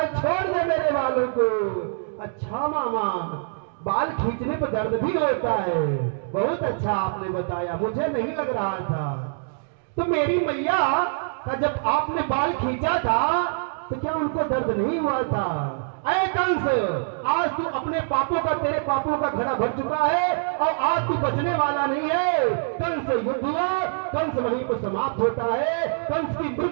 छोड़ दे मेरे बालों को। अच्छा मामा, बाल खींचने पर दर्द भी होता है, बहुत अच्छा आपने बताया, मुझे नहीं लग रहा था। तो मेरी मैया का जब आपने बाल खींचा था तो क्या उनको दर्द नहीं हुआ था? अरे कंस, आज तू अपने पापों का, तेरे पापों का घड़ा भर चुका है और आज तू बचने वाला नहीं है। कंस युद्ध हुआ, कंस वहीं पर समाप्त होता है, कंस की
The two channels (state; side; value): silent; left; digital silence